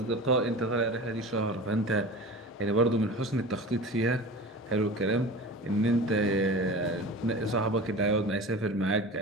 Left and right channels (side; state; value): both; normal; correlation 0.34